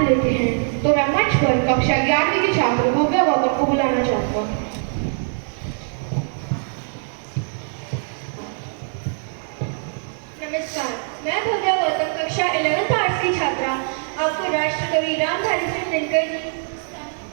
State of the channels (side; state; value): left; silent; digital silence